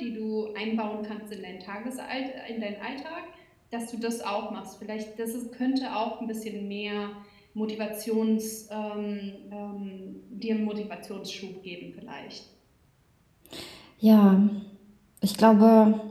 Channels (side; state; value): both; identical; correlation 1.00